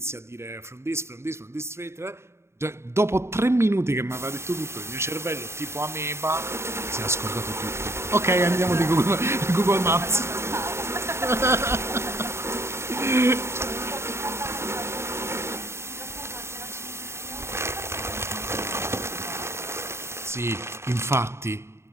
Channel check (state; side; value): late; left; 0.13 ms